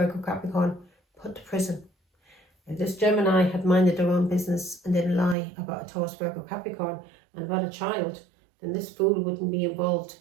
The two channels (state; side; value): drops out; left; at 5.4 s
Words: Capricorn put to prison. If this Gemini had minded their own business and didn't lie about a Taurus, Virgo, Capricorn and about a child, then this fool wouldn't be involved